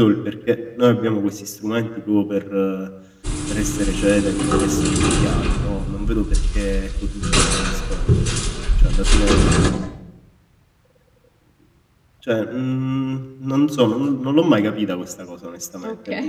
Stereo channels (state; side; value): identical; both; correlation 1.00